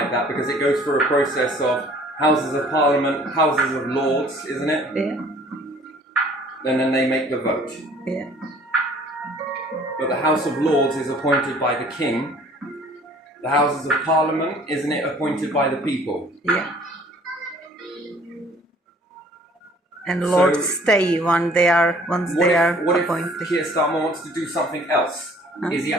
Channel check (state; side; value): normal; both; correlation 0.54